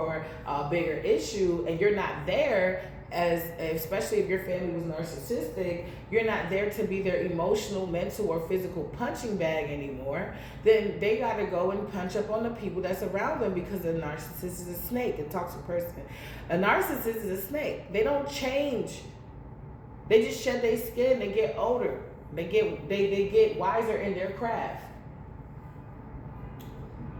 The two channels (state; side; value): identical; both; correlation 1.00